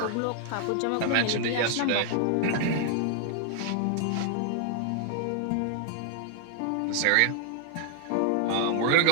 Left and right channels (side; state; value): both; different; correlation 0.00